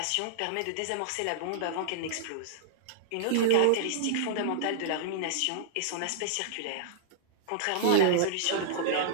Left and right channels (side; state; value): both; different; correlation -0.02